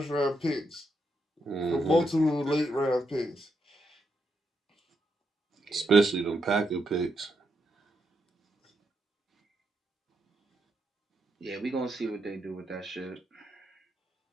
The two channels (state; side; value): normal; both; correlation 0.81